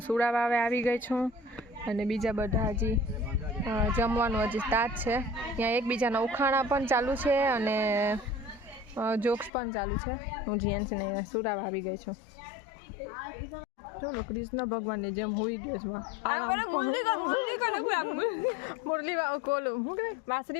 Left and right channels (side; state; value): right; drops out; at 9.5 s